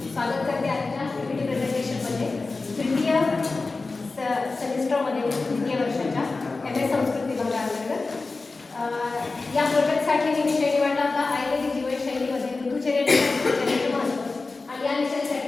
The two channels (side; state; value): right; quieter; 3.7 dB